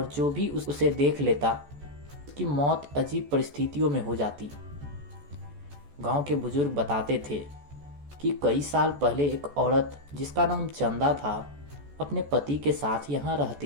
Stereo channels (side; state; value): left; late; 14 ms